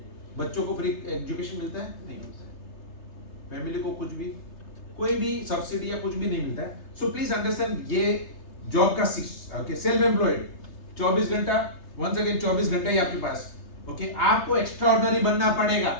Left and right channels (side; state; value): right; late; 3.3 ms